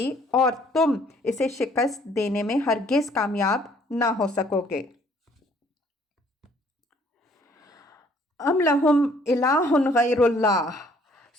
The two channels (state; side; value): normal; both; correlation 0.61